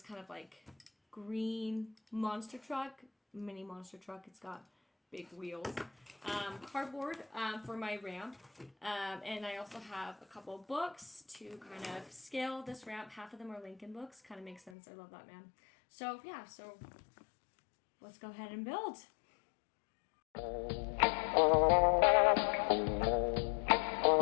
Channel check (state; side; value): drops out; right; at 14.8 s